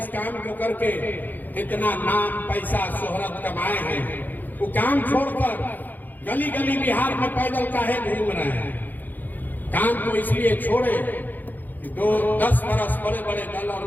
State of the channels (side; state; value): right; late; 0.085 ms